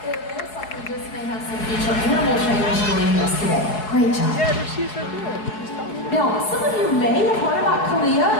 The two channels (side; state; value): right; late; 4.7 ms